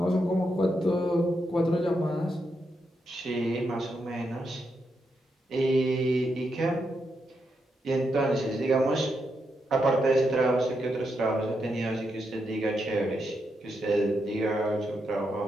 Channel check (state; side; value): normal; both; correlation 0.83